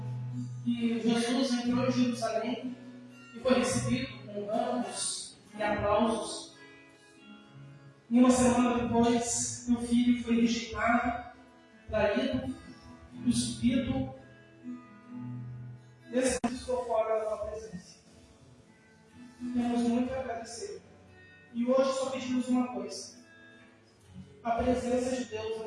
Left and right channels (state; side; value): identical; both; correlation 1.00